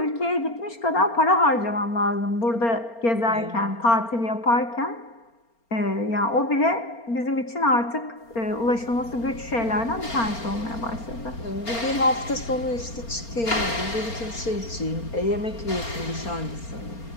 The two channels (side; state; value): right; late; 4.3 ms